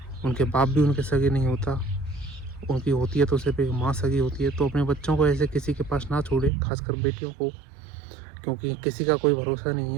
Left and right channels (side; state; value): left; drops out; at 6.5 s